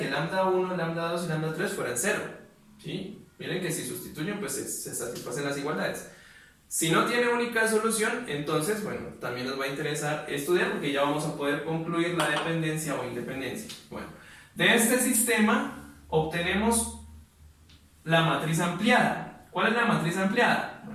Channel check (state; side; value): identical; both; correlation 1.00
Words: lambda 1, lambda 2 y lambda 3 fueran 0. ¿Sí? Miren que si sustituyen, pues se satisfacen las igualdades. Si no tiene única solución, entonces, bueno, también nos va a interesar estudiar porque ya vamos a poder concluir la dependencia o independencia. Bueno, de este sistema obtenemos la matriz ampliada. ¿Cuál es la matriz ampliada?